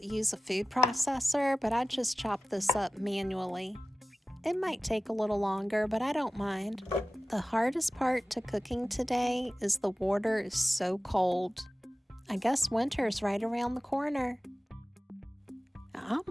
use a food processor, but I just chop this up manually. It might take a little longer, but I don't mind. The hardest part to cooking today is the water is so cold. I guess winter's right around the corner. I'm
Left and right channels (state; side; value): normal; both; correlation 0.95